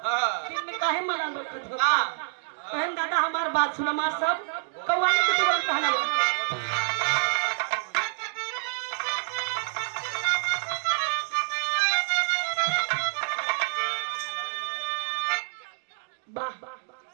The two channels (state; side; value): silent; left; digital silence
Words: फिर में काहे मना लो बहन दादा हमार बात सुन। हमार सब कौवाने के तुरंत कहना वाह